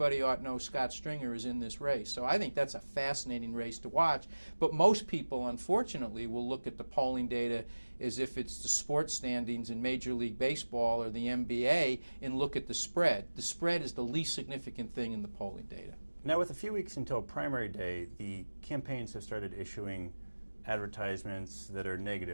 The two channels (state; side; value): inverted; both; correlation -1.00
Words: ought to know Scott Stringer is in this race. So I think that's a fascinating race to watch. But most people, unfortunately, will look at the polling data as if it's the sports standings in Major League Baseball or the NBA and look at the spread. The spread is the least significant thing in the polling data. Now, with a few weeks until primary day, the campaigns have started issuing advertisements that are